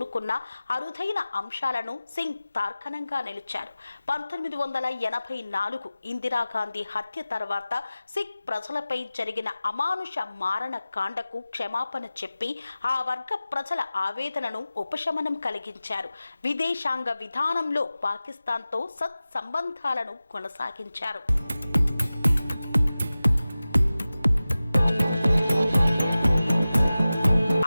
అరుదైన అంశాలను సింగ్ తార్కాణంగా నిలిచారు. 1984 ఇందిరాగాంధీ హత్య తర్వాత సిక్ ప్రజలపై జరిగిన అమానుష మారణ కాండకు క్షమాపణ చెప్పి ఆ వర్గ ప్రజల ఆవేదనను ఉపశమనం కలిగించారు. విదేశాంగ విధానంలో పాకిస్తాన్తో సత్సంబంధాలను కొనసాగించారు.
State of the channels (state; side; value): inverted; both; correlation -0.96